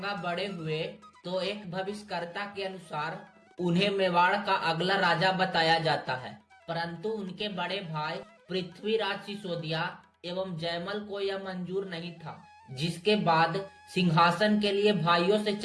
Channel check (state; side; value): identical; both; correlation 1.00